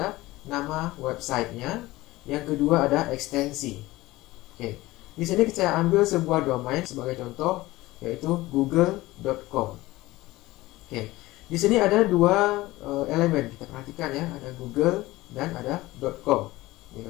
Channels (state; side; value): quieter; right; 18.7 dB